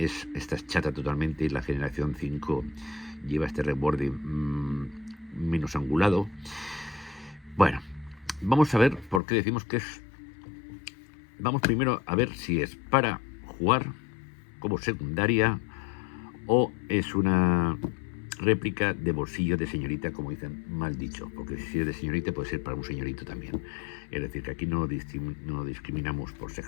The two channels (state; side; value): drops out; right; at 9.2 s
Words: es chata totalmente, y la generación 5 lleva este reborde menos angulado. Bueno, vamos a ver por qué decimos que es. Vamos primero a ver si es para jugar como secundaria o es una réplica de bolsillo de señorita, como dicen, mal dicho, porque si es de señorita puede ser para un señorito también. Es decir, que aquí no discriminamos por